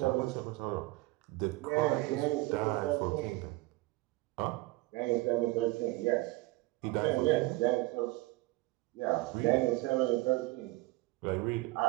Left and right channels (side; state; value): left; quieter; 21.2 dB